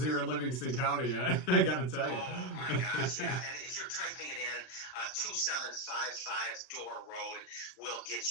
here in Livingston County, I got to tell you. Oh, my gosh, yeah. And if you're typing it in, 2755 Door Road will get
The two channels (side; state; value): right; late; 39 ms